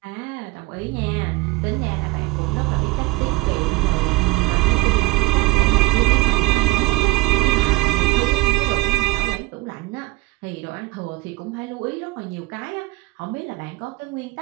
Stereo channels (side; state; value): left; quieter; 21.2 dB